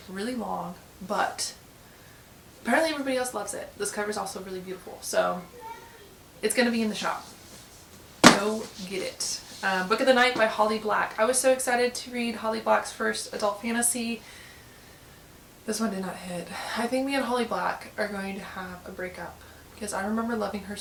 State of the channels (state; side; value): identical; both; correlation 1.00